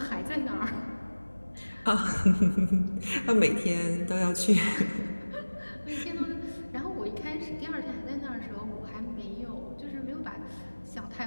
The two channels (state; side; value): inverted; both; correlation -1.00